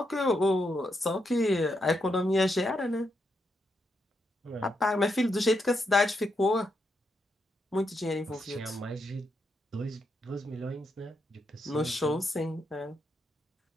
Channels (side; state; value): both; normal; correlation 0.81